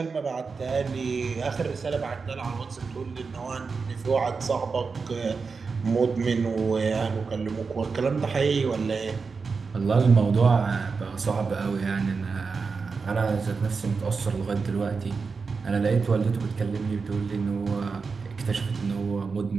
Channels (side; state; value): left; quieter; 4.9 dB